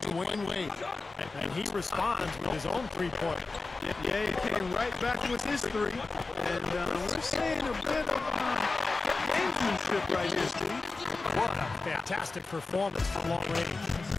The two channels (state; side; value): quieter; right; 3.7 dB